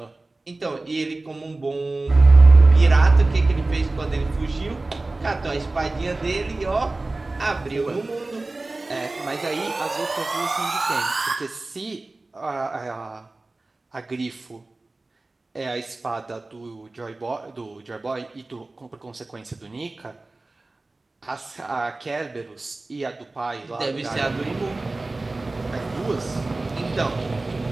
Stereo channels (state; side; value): quieter; left; 3.1 dB